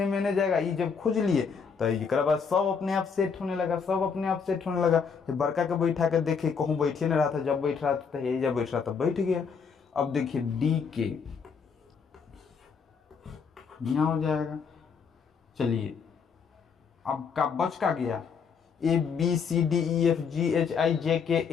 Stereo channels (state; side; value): quieter; right; 6.0 dB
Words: मैंने जाएगा। ये जब खोज लिए तो एक बाद सब अपने आप सेट होने लगा, सब अपने आप सेट होने लगा। बड़का के बैठा के देखे कहूँ बैठे नहीं रहा था, जब बैठ रहा था यही जब बैठ रहा था बैठ गया। अब देखिए DK यहाँ हो जाएगा। चलिए अब का बच का गया, ABCDEFGHIJK